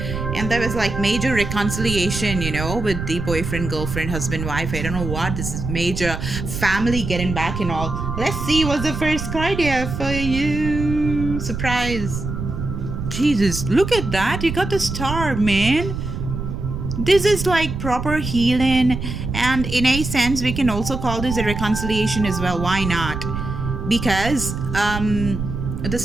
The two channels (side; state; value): right; noise; rumble, 5 dB below the sound